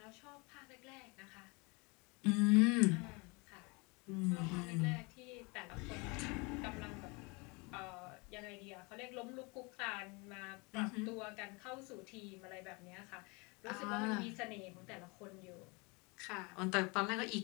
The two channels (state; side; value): quieter; right; 28.7 dB